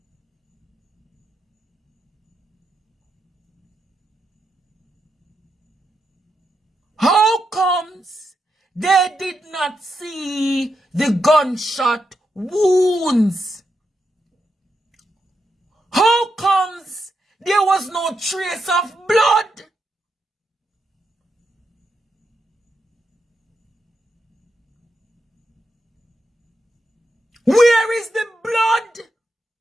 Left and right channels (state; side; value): normal; both; correlation 0.84